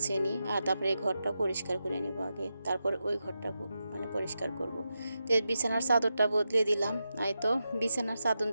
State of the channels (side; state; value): both; inverted; correlation -0.88